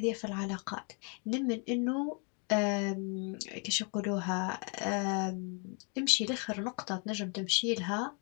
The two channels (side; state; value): right; quieter; 37.4 dB